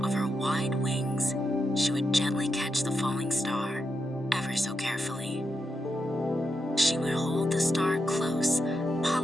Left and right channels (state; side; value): normal; both; correlation 0.86